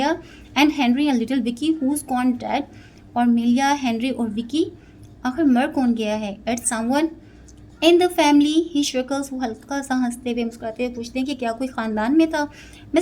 and Henry and little Vicky who's gone dead, और मिलिया, हेनरी और विकी आखिर मर कौन गया है। At someone in the family he chuckles, वो हल्का सा हंसते हुए मुस्कुराते हुए पूछते हैं कि क्या कोई ख़ानदान में था।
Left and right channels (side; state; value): both; identical; correlation 1.00